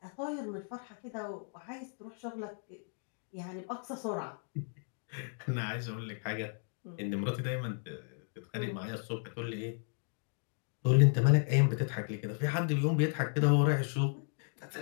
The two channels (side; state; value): right; silent; 55 dB below the other